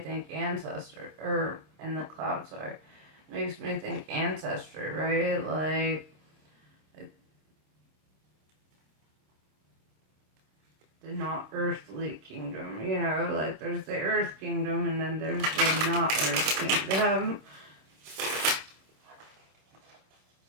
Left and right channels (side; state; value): left; late; 26 ms